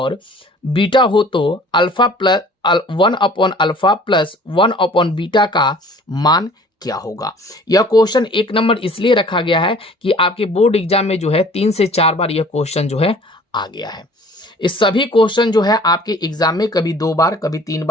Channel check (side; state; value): both; normal; correlation 0.50